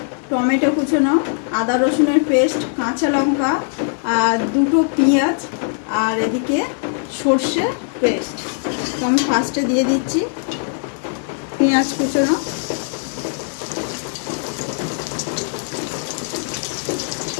টমেটো কুচোনো, আদা রসুনের পেস্ট, কাঁচা লঙ্কা আর দুটো পেঁয়াজ, আর এদিকে সর্ষে পেস্ট। তো আমি ফার্স্টে দিয়ে দিচ্ছি পেঁয়াজ কুচোনো,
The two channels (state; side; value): silent; right; digital silence